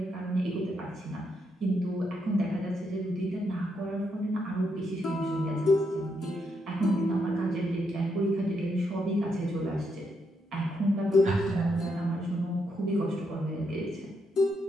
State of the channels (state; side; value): normal; both; correlation 0.79